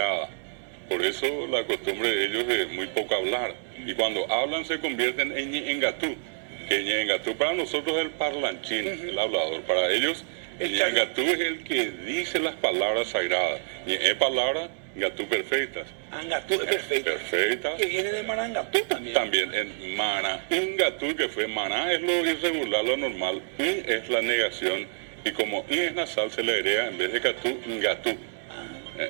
por eso la costumbre de ellos es muy poco hablar, y cuando hablan se convierten en Ñengatú, que Ñengatú para nosotros es el parlanchín, el hablador, para ellos Ñengatú es el que dice las palabras sagradas, es palabra Ngatú perfectas. Angatú es perfecta. Perfecta. Que viene de Marangatú también. También en Mana, Ingatú, que fue Maná, es lo irregular, lo normal. In es la negación. Y como In es nasal, se le agrega en vez de Catú, Ngatú.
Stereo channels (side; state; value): left; silent; digital silence